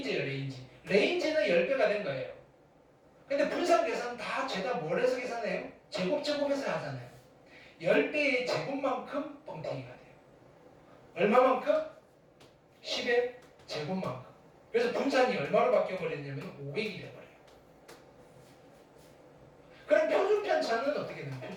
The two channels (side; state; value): both; identical; correlation 1.00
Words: 레인지. 레인지는 10배가 된 거예요. 근데 분산 계산 다 죄다 뭘 해서 계산해요? 제곱해서 하잖아요. 10배의 제곱만큼 뻥튀기가 돼요. 얼마만큼? 10의 제곱만큼. 그래서 분산이 얼마로 바뀌어버렸냐면 500이 돼버려요. 그럼 표준편차는 어떻게 되나요?